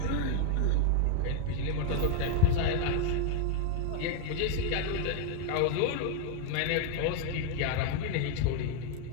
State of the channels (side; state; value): both; different; correlation 0.00